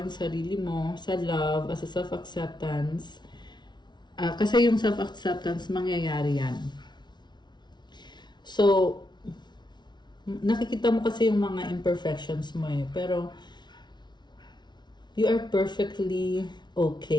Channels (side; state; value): right; late; 0.21 ms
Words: sarili mo sa love, as a self-acceptance. Kasi yung self-acceptance, mangyayari yan. So, nakikita mo kasi yung mga imperfections mo eh, pero you are perfectly